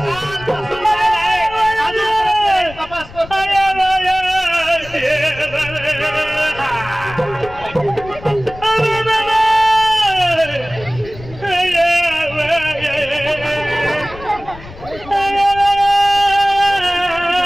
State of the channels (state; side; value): noise; left; rumble, 17 dB below the sound